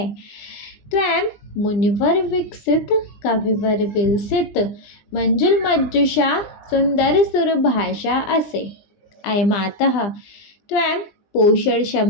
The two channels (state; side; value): late; right; 20 ms